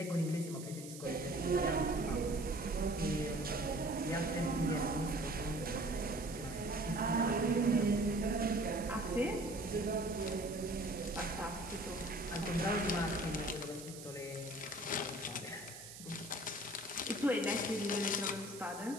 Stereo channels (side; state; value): right; noise; hiss, 13 dB below the sound